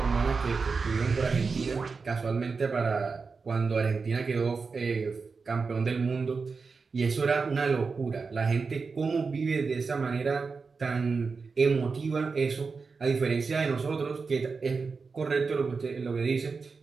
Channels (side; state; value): left; quieter; 4.7 dB